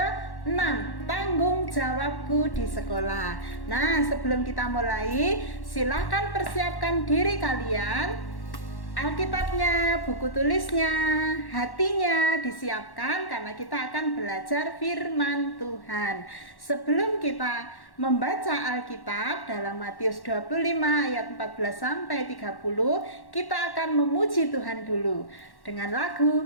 tanggung jawabku di sekolah. Nah, sebelum kita mulai, silakan persiapkan diri kalian. Alkitabnya, buku tulisnya, hatinya disiapkan karena kita akan belajar firman Tuhan. Sebelum kita membaca Alkitab dalam Matius 25 ayat 14 sampai 30, kita akan memuji Tuhan dulu dengan lagu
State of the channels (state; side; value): late; right; 1.1 ms